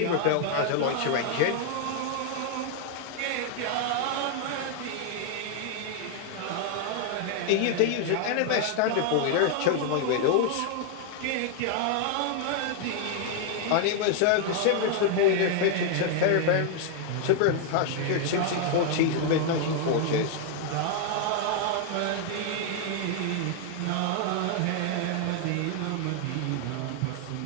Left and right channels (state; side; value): different; both; correlation 0.00